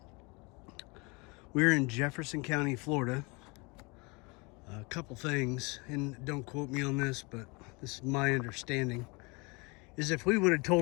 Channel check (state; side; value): quieter; right; 28.1 dB